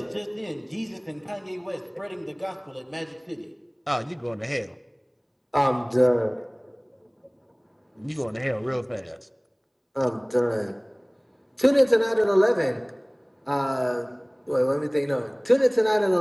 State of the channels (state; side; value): identical; both; correlation 1.00